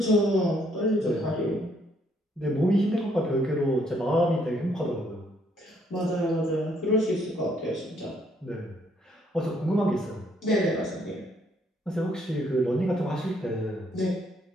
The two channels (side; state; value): both; normal; correlation 0.69